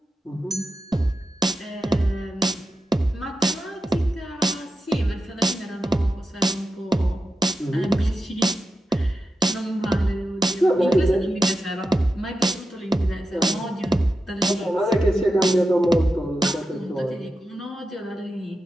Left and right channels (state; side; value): normal; both; correlation 0.90